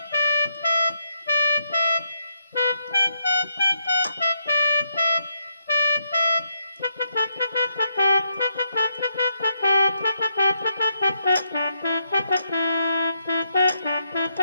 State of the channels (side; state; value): both; inverted; correlation -0.78